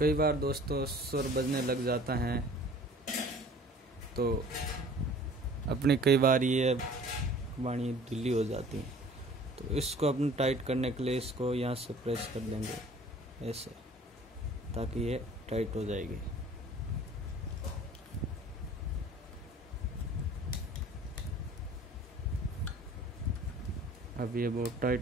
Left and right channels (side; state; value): both; normal; correlation 0.49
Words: बार दोस्तों स्वर बजने लग जाता है तो अपनी कई बार ये वाणी ढीली हो जाती है। तो इसको अपने टाइट करने के लिए इसको यहाँ से प्रेस कर देंगे ऐसे, ताकि ये टाइट हो जाएगी। अब ये बहुत